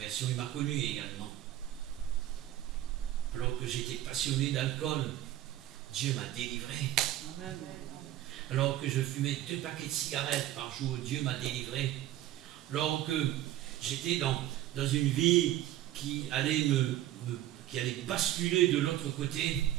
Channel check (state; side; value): quieter; left; 13.6 dB